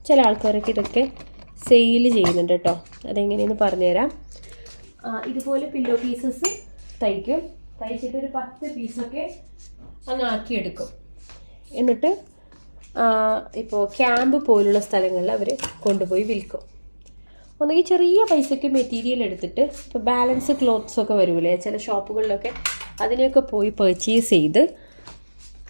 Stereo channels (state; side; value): inverted; both; correlation -1.00